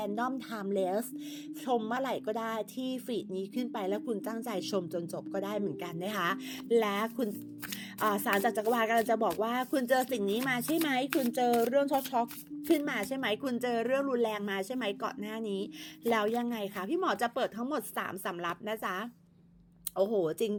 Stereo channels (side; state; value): both; identical; correlation 1.00